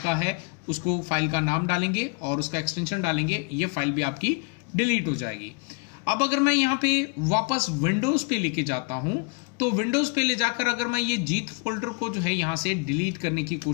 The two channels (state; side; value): quieter; right; 34.5 dB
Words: है उसको फाइल का नाम डालेंगे और उसका एक्सटेंशन डालेंगे, ये फाइल भी आपकी डिलीट हो जाएगी। अब अगर मैं यहां पे वापस विंडोज पे लेके जाता हूं तो विंडोज पे ले जाकर अगर मैं ये जीत फोल्डर को जो है यहां से डिलीट करने की